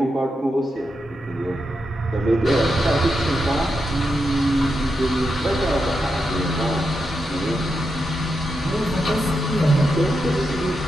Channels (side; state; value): both; normal; correlation 0.86